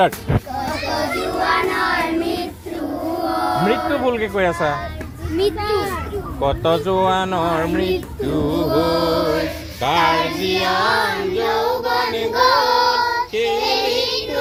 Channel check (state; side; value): identical; both; correlation 1.00